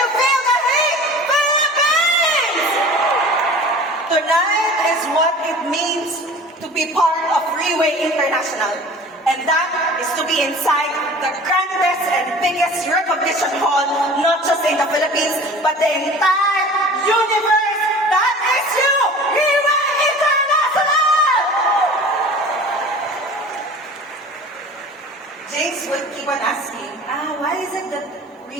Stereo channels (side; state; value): both; normal; correlation 0.42